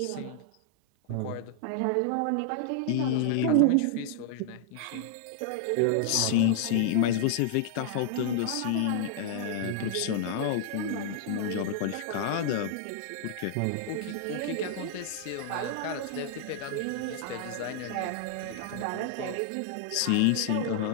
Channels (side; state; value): both; different; correlation -0.01